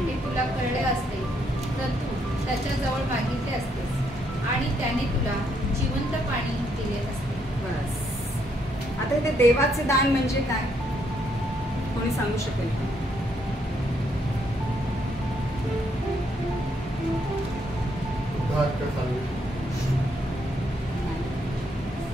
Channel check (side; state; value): both; normal; correlation 0.73